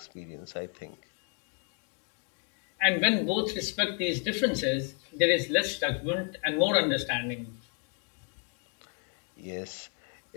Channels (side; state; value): right; quieter; 36.9 dB